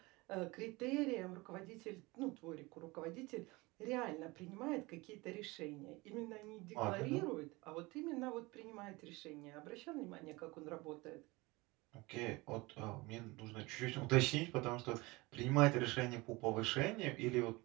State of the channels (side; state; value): left; quieter; 23.1 dB